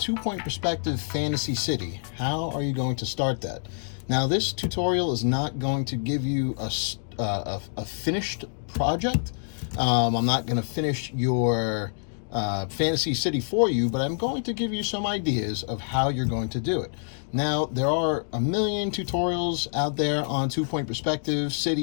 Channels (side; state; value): right; silent; digital silence